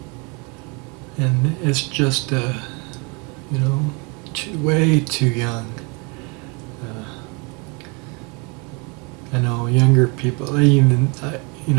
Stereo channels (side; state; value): left; quieter; 30.8 dB